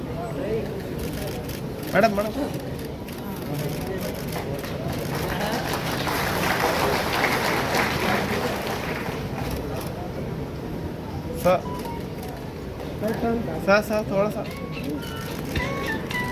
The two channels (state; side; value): identical; both; correlation 1.00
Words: मैडम मैडम सा थोड़ा सा